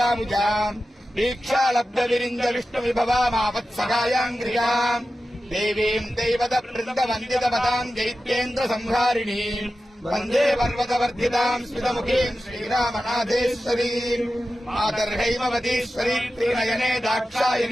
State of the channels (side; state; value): both; normal; correlation 0.93